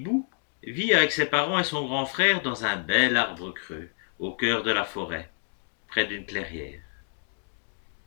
vit avec ses parents et son grand frère dans un bel arbre creux, au cœur de la forêt, près d'une clairière.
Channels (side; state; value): right; silent; 59 dB below the other